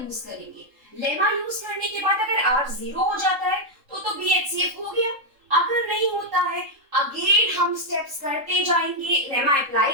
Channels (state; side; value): late; left; 3.7 ms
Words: करेंगे। लेमा यूज करने के बाद अगर r 0 हो जाता है तो b HCF हो गया, अगर नहीं होता है अगेन हम स्टेप्स करते जाएंगे, लेमा अप्लाई